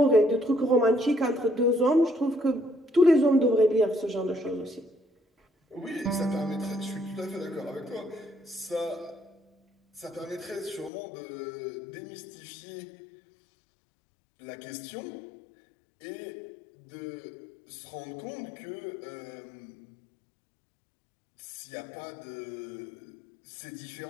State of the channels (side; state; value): right; drops out; at 10.9 s